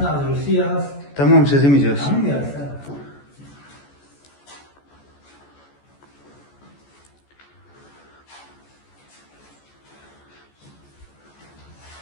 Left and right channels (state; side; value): late; right; 14 ms